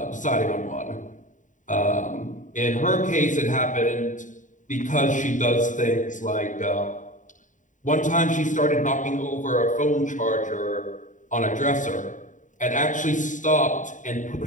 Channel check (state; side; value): late; right; 0.37 ms